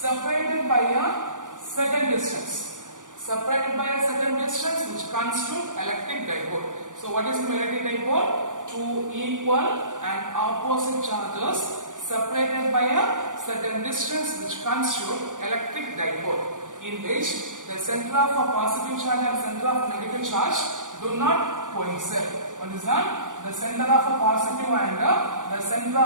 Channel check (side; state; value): left; late; 0.87 ms